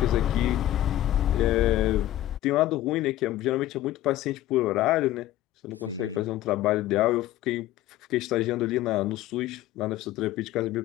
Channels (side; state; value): right; quieter; 14.2 dB